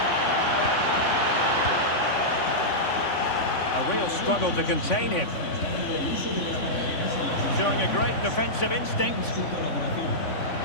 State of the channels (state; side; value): late; right; 3.5 ms